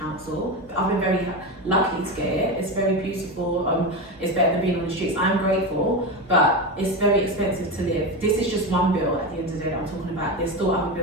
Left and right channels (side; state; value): both; normal; correlation 0.18